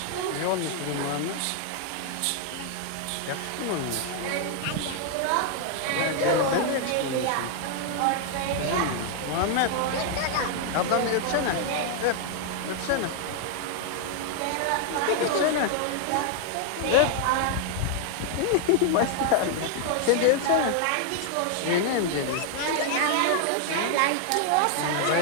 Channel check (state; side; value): different; both; correlation 0.00